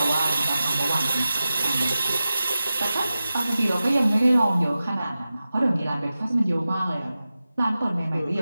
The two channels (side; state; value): both; inverted; correlation -0.94